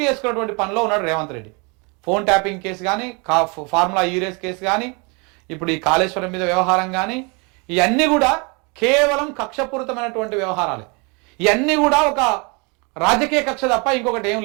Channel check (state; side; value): quieter; left; 31.3 dB